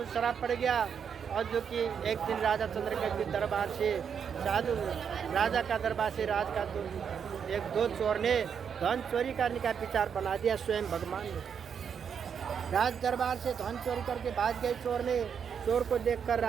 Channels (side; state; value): left; quieter; 7.2 dB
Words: श्राप पड़ गया, और जो कि एक दिन राजा चंद्रकेतु के दरबार से साधु राजा का दरबार से राज का दो चोर ने धन चोरी करने का विचार बना दिया स्वयं भगवान ने। राज दरबार से धन चोरी करके भाग गए चोर ने। चोर को देखकर